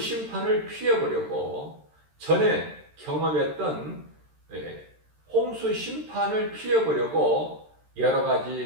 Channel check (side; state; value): left; late; 13 ms